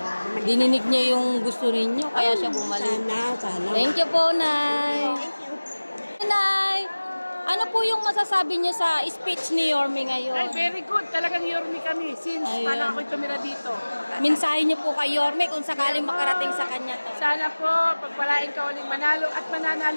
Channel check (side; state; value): both; inverted; correlation -1.00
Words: Dininig niya yung gusto ninyo, kaya siya bumalik. Sana. Thank you po, Nay. Nay, ano po yung masasabi niyo sa speech ni Yorme ngayon? Ay, very good. Talagang Yorme kami since paano ako'y tumira dito. Mensahe niyo po kay Yorme kung sakaling makarating sa kanya to. Sana po, pagpalain ka uling manalo at